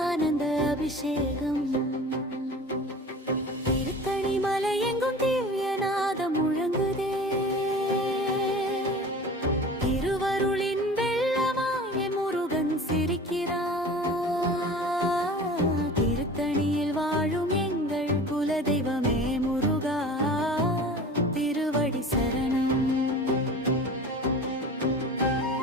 ஆனந்த அபிஷேகம். திருத்தணி மலை எங்கும் திவ்யநாதம் முழங்குதே. திருவருளின் வெள்ளமாய முருகன் சிரிக்கிறார். திருத்தணியில் வாழும் எங்கள் குலதெய்வமே முருகா, திருவடி சரணம்.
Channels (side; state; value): both; normal; correlation 0.39